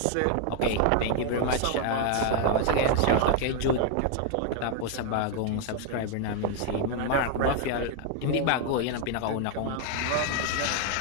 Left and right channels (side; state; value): both; different; correlation 0.00